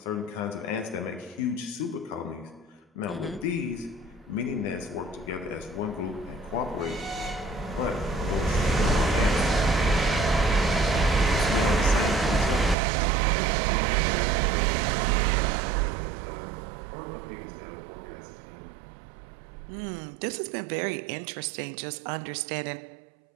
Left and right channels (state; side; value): drops out; left; at 12.8 s